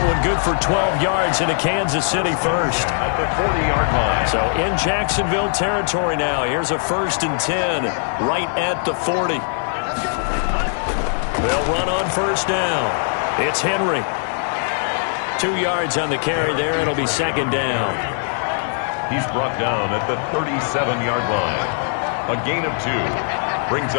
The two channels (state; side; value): silent; right; digital silence